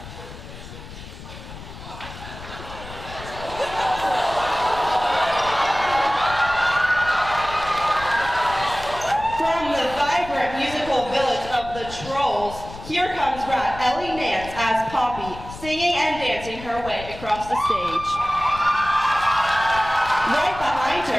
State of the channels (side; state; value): left; noise; rumble, 14 dB below the sound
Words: from the vibrant musical village of the Trolls, here comes Rat Ellie Nance as Poppy, singing and dancing her way across the stage. Right behind